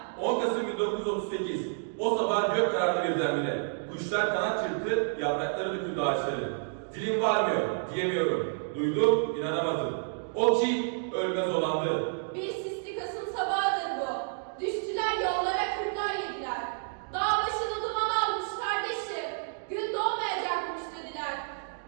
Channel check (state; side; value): silent; left; digital silence